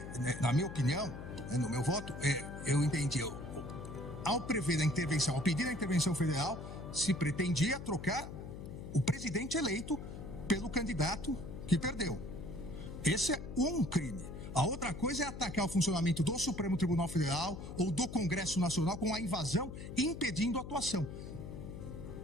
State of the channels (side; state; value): left; noise; hum, 10 dB below the sound